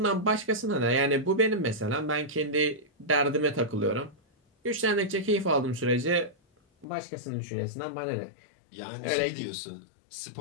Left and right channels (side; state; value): right; drops out; at 6.9 s